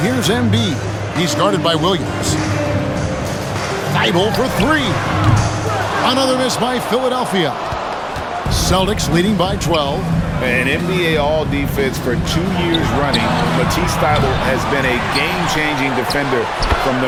Embiid. He's guarded by Williams. Thibault for three. Another miss by Philadelphia. Celtics leading by 12. An NBA All-Defense for 2 years running. Matisse Thybulle has been a game-changing defender from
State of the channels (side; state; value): both; identical; correlation 1.00